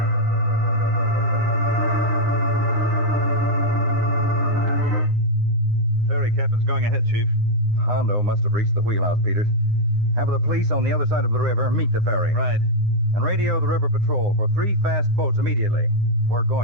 The ferry captain's going ahead, Chief. Hondo must have reached the wheelhouse, Peters. Have the police on the other side of the river meet the ferry. Right. And radio the river patrol for 3 fast boats immediately. We're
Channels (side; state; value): left; late; 9.7 ms